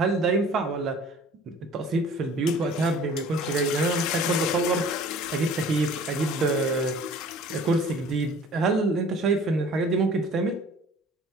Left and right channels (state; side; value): normal; both; correlation 0.48